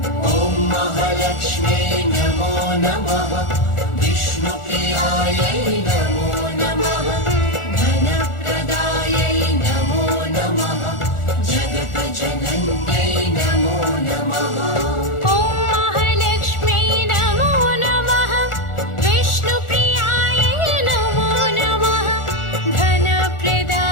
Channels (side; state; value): right; late; 1.4 ms